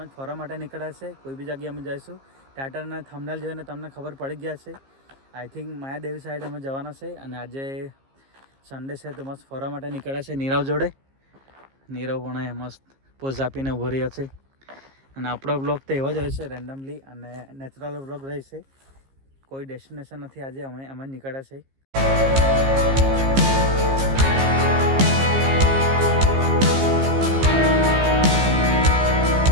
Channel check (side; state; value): left; late; 15 ms